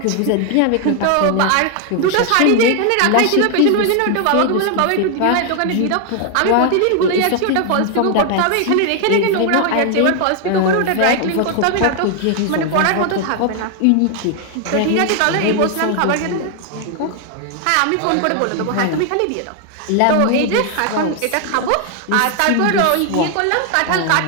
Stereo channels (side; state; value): both; different; correlation 0.00